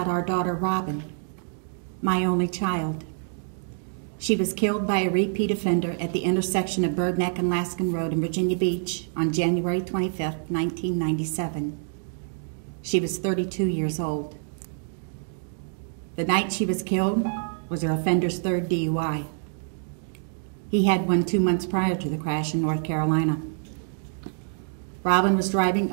our daughter, Robin, my only child. She was killed by a repeat offender at the intersection of Bird Neck and Laskin Road in Virginia Beach on January 25, 1997. She was 32 years old. The night she was killed was her offender's third DUI. He had one 2 months prior to the crash in North Carolina. Robin was driving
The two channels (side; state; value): left; silent; digital silence